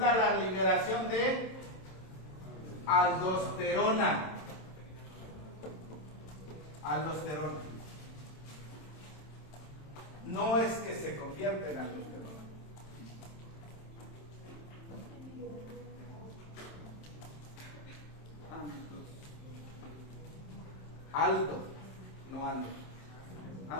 la liberación de aldosterona. Aldosterona. No es que se convierta en aldosterona. Aldo, no Aldo.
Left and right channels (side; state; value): right; late; 27 ms